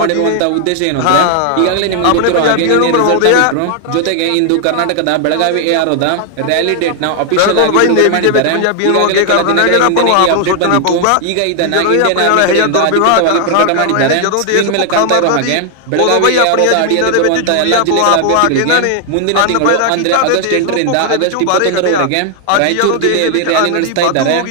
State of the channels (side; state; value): both; different; correlation 0.00